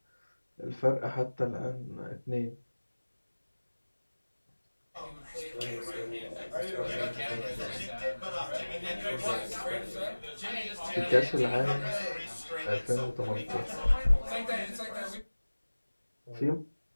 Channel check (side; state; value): both; inverted; correlation -1.00